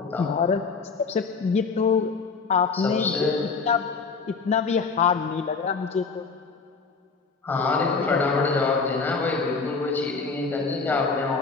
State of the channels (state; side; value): quieter; right; 4.8 dB